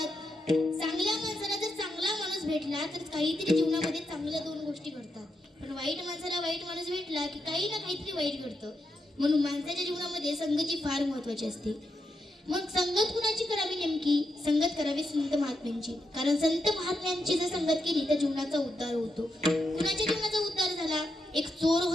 चांगल्या माणसाला जर चांगला माणूस भेटला तर काहीतरी जीवनामध्ये चांगल्या 2 गोष्टी घडतात. पण वाईट माणसाला वाईट माणूस भेटला की काही ना काहीतरी वाईट घडतं. म्हणून माणसाच्या जीवनामध्ये संगती फार महत्वाची असते. मग संगत कुणाची करावी? नेमकी संगत करावी संत महात्म्यांची. कारण संत महात्म्यांची जर संगत केली तर जीवनाचा उद्धार होतो. कुणाच्या जीवनाचा उद्धार झाला? एक चोर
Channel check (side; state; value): both; normal; correlation 0.84